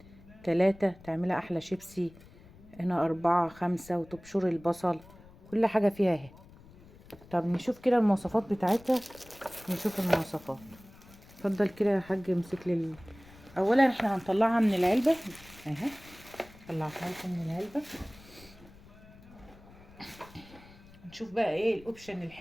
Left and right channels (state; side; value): noise; left; rumble, 22 dB below the sound